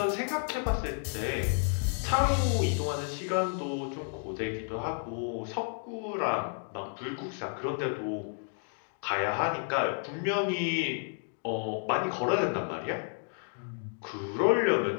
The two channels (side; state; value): right; silent; 57 dB below the other